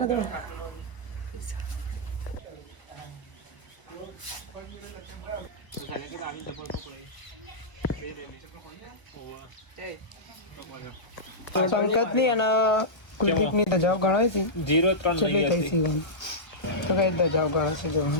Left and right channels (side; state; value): right; late; 1.2 ms